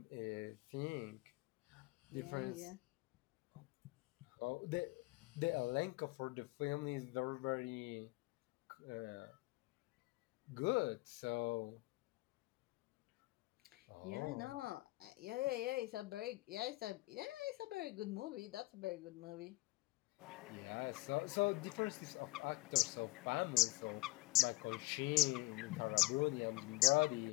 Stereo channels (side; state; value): right; quieter; 21.5 dB